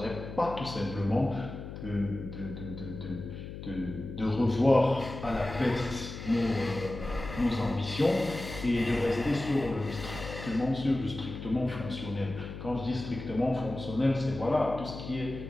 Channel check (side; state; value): left; noise; hum, 10 dB below the sound